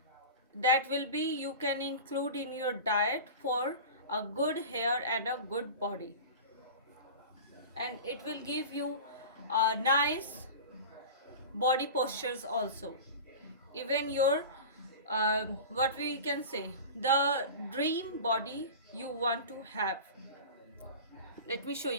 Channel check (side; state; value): both; inverted; correlation -0.32